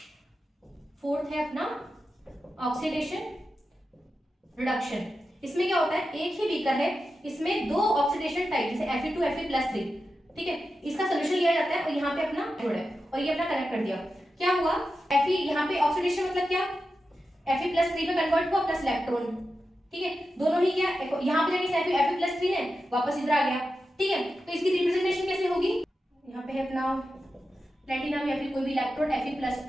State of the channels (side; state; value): both; normal; correlation 0.90